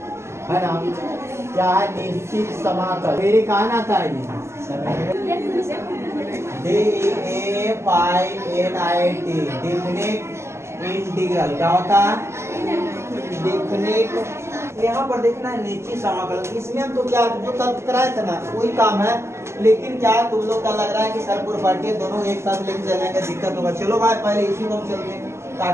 है ना, क्या है निश्चित समाकल मेरे कहा ना था जी DEFINIT डिफिनिट इंटीग्रल क्या होता है, डिफिनिट। यहाँ पर देखना है निश्चित समाकल, इसमें हम तो क्या जो कल कराए थे ना वही काम है, लेकिन क्या तुम लोग का लग रहा है कि सर प्रॉपर्टी दोनों एक साथ लेके चलेंगे दिक्कत होगा। चलो भाई पहले इसी को हम चलते हैं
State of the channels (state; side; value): late; left; 0.13 ms